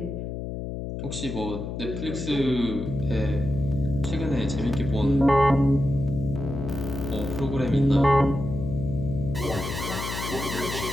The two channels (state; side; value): noise; left; hum, 6 dB below the sound